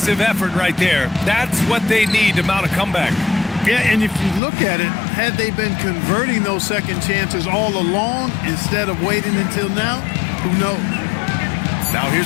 effort right there. That's what they need to mount a comeback. Yeah, and if you look at it, had they been converting those second chances all along instead of waiting until now, who knows? Now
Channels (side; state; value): right; drops out; at 4.4 s